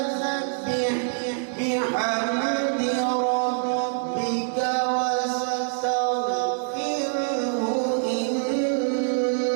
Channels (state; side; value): silent; left; 62 dB below the other